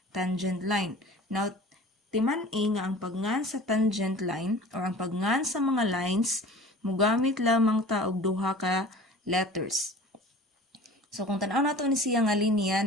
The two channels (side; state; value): both; normal; correlation 0.42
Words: tangent line. Now, timan-i nga ang pagngan sa tangent line or ang pagngan sa mga lines, mugamit lamang ta og duha ka letters. So, kung tanaw nato ni siya nga linya